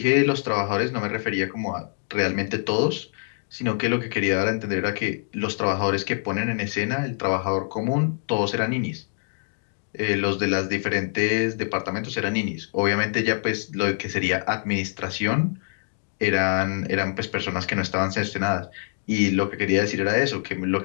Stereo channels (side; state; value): right; silent; digital silence